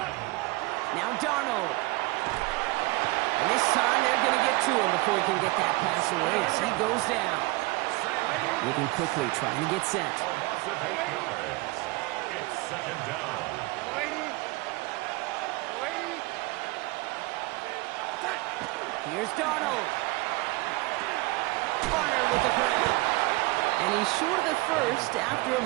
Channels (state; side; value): quieter; left; 22.8 dB